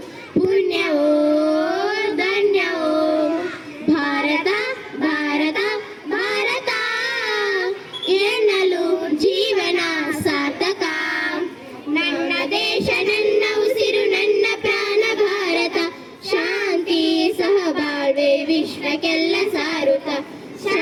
ಪುಣ್ಯವೋ ಧನ್ಯವೋ. ಭಾರತ ಭಾರತ ಭಾರತ ಎನ್ನಲು ಜೀವನ ಸಾರ್ಥಕ. ನನ್ನ ದೇಶ ನನ್ನ ಉಸಿರು ನನ್ನ ಪ್ರಾಣ ಭಾರತ, ಶಾಂತಿ ಸಹಬಾಳ್ವೆ ವಿಶ್ವಕ್ಕೆಲ್ಲ ಸಾರುತ್ತ,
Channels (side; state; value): both; identical; correlation 1.00